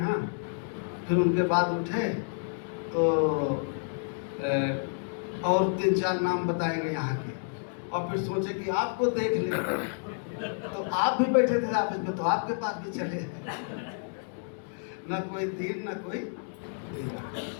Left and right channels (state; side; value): silent; right; digital silence